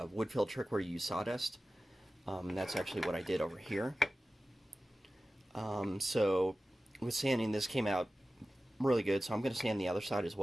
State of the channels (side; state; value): both; normal; correlation 0.95